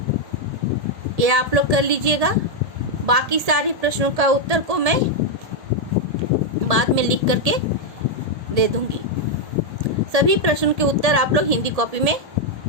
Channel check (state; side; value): late; left; 1.7 ms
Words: ये आप लोग कर लीजिएगा। बाकी सारे प्रश्नों का उत्तर को मैं बाद में लिख करके दे दूंगी। सभी प्रश्नों के उत्तर आप लोग हिंदी कॉपी में